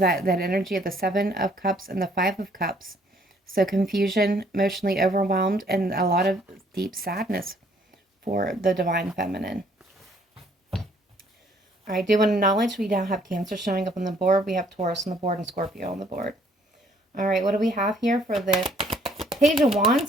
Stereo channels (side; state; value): both; normal; correlation 0.63